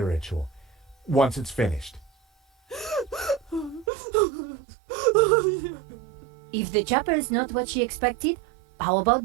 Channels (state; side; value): drops out; left; at 3.9 s